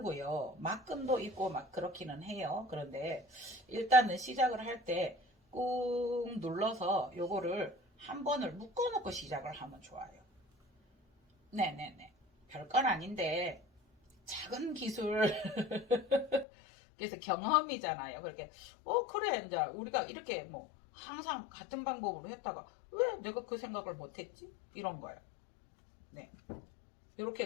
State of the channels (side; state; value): right; drops out; at 16.4 s